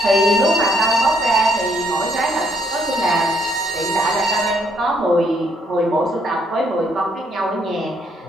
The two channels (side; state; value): both; normal; correlation 0.70